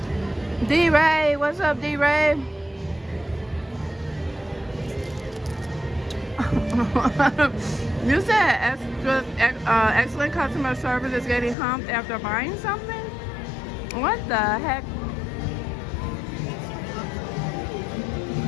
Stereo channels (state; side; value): drops out; right; at 11.6 s